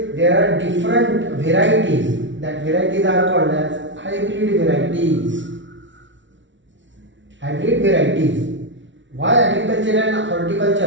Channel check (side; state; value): left; late; 0.55 ms